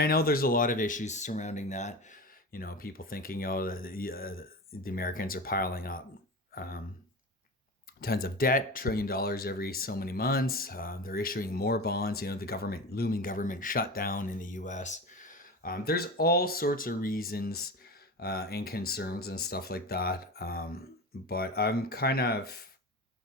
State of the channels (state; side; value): normal; both; correlation 0.28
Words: I know there's a lot of issues surrounding that. People thinking, the Americans are piling up tons of debt, $1 trillion every so many months. They're issuing more bonds. The looming government shutdown in the U.S. There's all sorts of reasons and concerns and stuff like that. But I'm kind of,